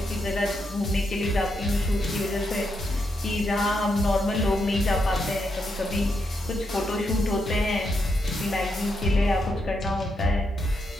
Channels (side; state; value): both; normal; correlation 0.82